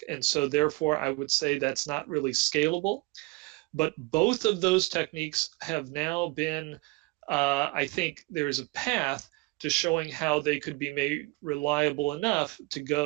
and so therefore I would say that's not really scalable. But both of those techniques have now been, I think there's a path to showing how they could be made reliable enough to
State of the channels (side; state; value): left; quieter; 24.4 dB